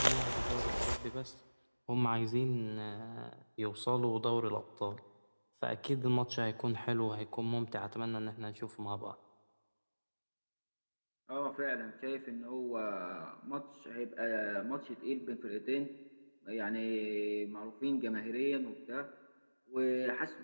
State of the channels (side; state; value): both; inverted; correlation -1.00